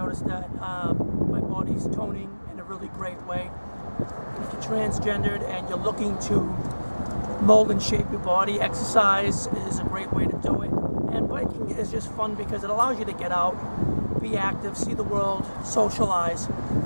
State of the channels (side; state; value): both; inverted; correlation -1.00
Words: that my body's toning in a really great way. If you're transgendered and you're looking to mold and shape your body, exercise is a great way to do it. And biking is just fun because it allows you to get out, be active, see the world, socialize,